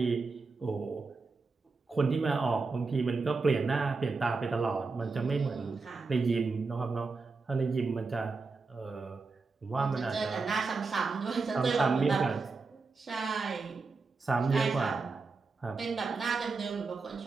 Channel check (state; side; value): quieter; left; 4.2 dB